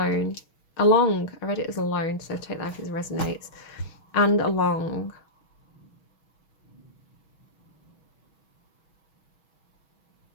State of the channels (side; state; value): right; late; 6.3 ms